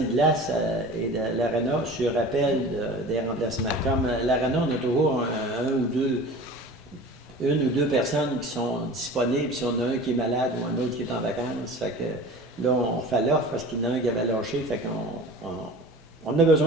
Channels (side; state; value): both; normal; correlation 0.39